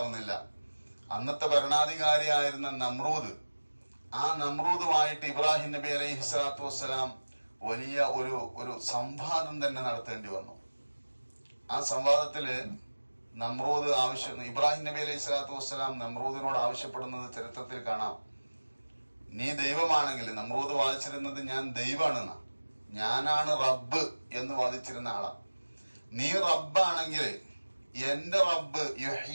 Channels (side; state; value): both; inverted; correlation -1.00